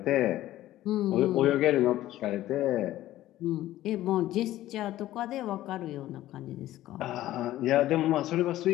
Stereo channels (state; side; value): quieter; right; 14.6 dB